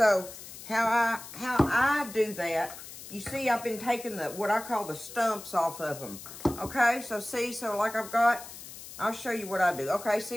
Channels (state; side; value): noise; left; hiss, 14 dB below the sound